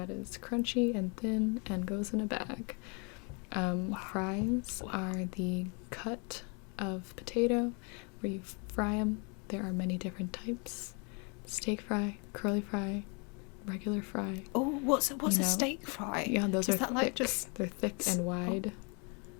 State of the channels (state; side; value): quieter; right; 33.9 dB